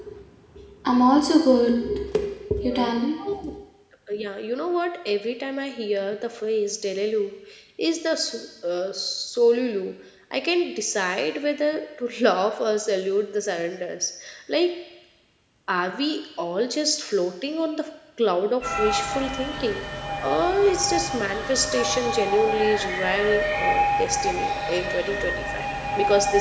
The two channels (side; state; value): both; identical; correlation 1.00